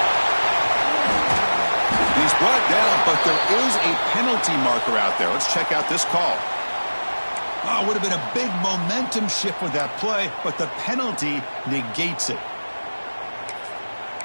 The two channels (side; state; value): both; inverted; correlation -1.00